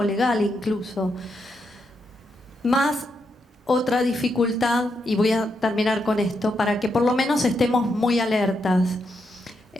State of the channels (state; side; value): normal; both; correlation 0.82